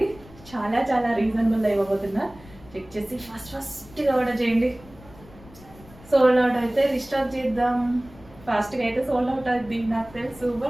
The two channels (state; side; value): noise; left; rumble, 22 dB below the sound